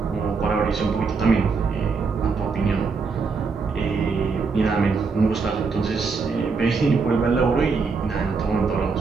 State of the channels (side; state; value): left; quieter; 4.8 dB